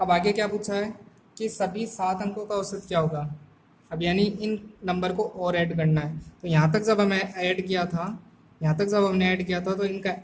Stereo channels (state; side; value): identical; both; correlation 1.00